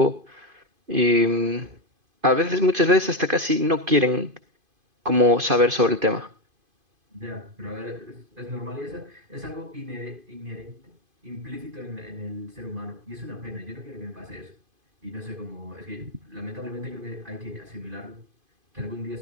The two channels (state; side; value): late; left; 2.5 ms